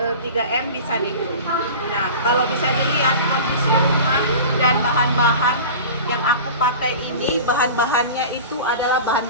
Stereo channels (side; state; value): both; inverted; correlation -0.35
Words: 3M bisa nego. Nah, kalau bisa dilihat kondisi rumah dan bahan-bahan yang aku pakai ini, bahan-bahannya itu adalah